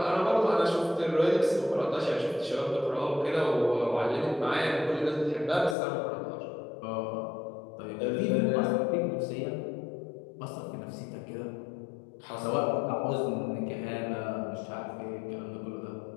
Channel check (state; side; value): drops out; right; at 5.8 s